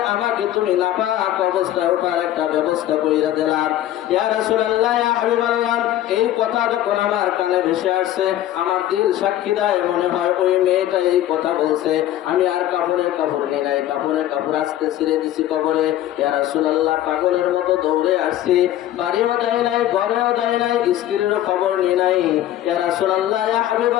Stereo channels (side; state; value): right; quieter; 13.0 dB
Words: আমাকে তুমি নাপাক অবস্থায় ওঠার একটা ব্যবস্থা কইরা দিলাম। ইয়া রাসূলুল্লাহ, ইয়া হাবিবাল্লাহ, এই কথা যখন আমার কানে ভেসে আসছে, আমার দিল সাক্ষী দেয় মনে হয় ওই মেয়েটা এই কথা বলছে। আমি আর কাপড় নিয়ে নাই, কাপড় আসতে ছিঁড়ে দিছি কবরে। ইয়া রাসূলুল্লাহ, পাগলের মতো দৌড়ে আসছি, বাড়িও দেয় নাই, ঘরেও দেয় নাই, স্ত্রীরও খবর নিয়ে নাই। ইয়া রাসূলুল্লাহ, ইয়া